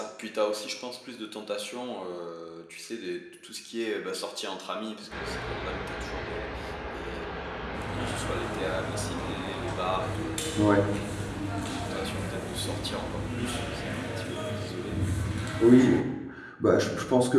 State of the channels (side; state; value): both; identical; correlation 1.00